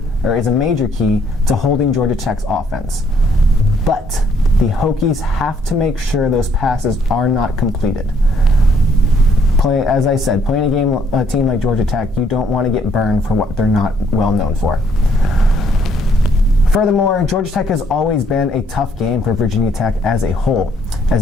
major key to holding Georgia Tech's offense. But the Hokies have to make sure those passes are not completed. As I said, playing a team like Georgia Tech, you don't want to get burned for what they're not well known for. Furthermore, Georgia Tech has always been a tough game for Virginia Tech as a whole,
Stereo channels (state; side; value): normal; both; correlation 0.67